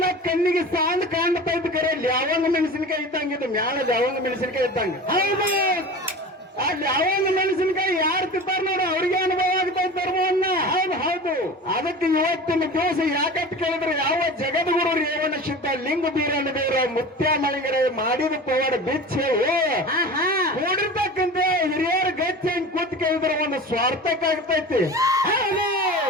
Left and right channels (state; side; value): normal; both; correlation 0.35